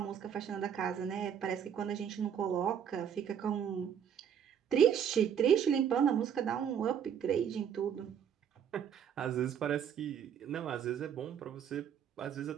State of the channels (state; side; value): quieter; left; 8.4 dB